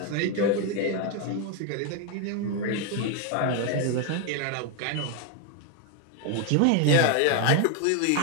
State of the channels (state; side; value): different; both; correlation 0.01